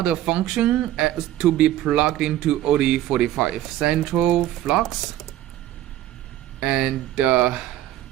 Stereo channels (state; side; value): quieter; left; 13.5 dB